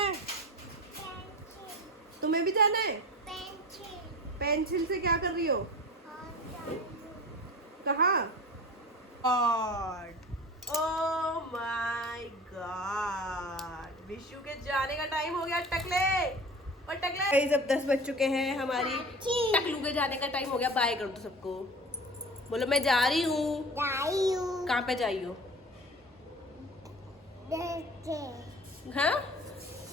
तुम्हें भी जाना है? पेंसिल से क्या कर रही हो? कहाँ? ओह माय गॉड, विशु के जाने का टाइम हो गया। टकले और टकले जब 10 बज चुके हैं, हमारी टकलू के जाने का टाइम हो गया। बाय कर दो सबको, बोलो मैं जा रही हूँ। कहाँ पे जा रही हो? हाँ?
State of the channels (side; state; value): both; normal; correlation 0.37